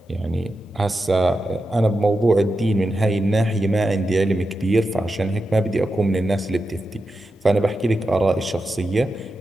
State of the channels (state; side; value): normal; both; correlation 0.89